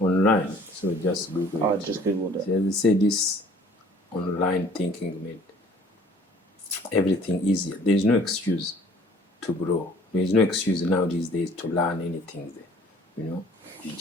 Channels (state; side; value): normal; both; correlation 0.54